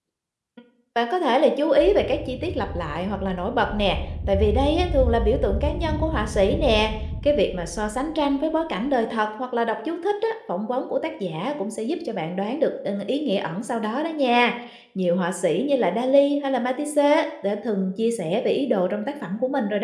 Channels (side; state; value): both; identical; correlation 1.00